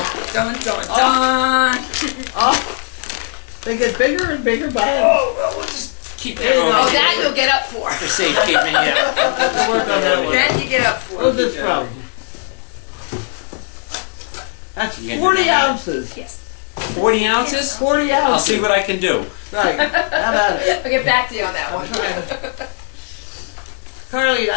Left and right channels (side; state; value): right; silent; 57 dB below the other